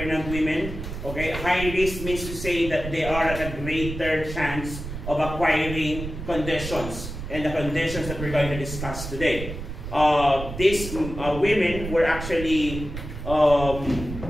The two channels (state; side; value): noise; right; rumble, 8 dB below the sound